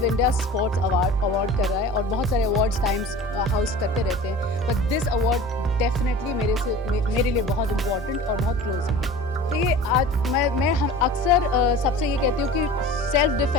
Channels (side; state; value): both; normal; correlation 0.39